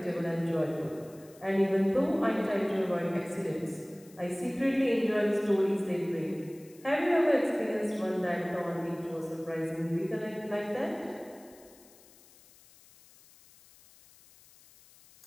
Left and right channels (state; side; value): noise; left; hiss, 25 dB below the sound